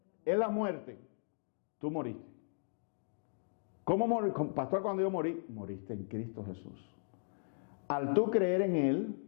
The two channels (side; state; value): right; silent; digital silence